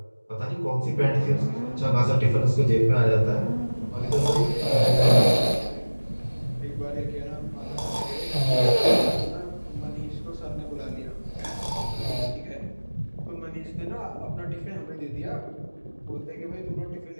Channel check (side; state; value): both; inverted; correlation -1.00